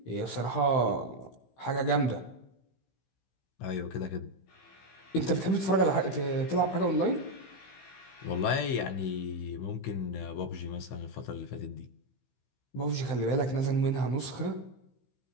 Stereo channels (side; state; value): right; late; 15 ms